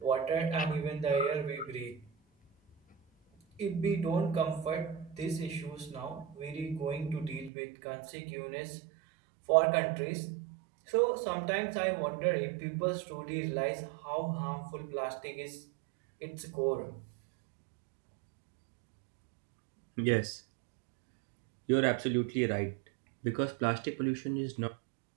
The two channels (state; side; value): drops out; left; at 7.5 s